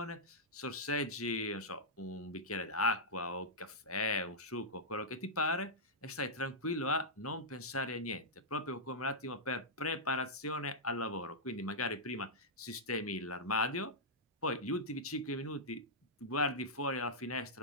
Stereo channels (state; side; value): normal; both; correlation -0.10